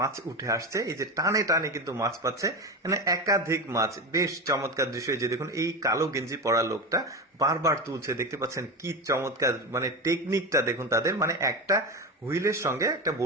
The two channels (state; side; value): normal; both; correlation 0.21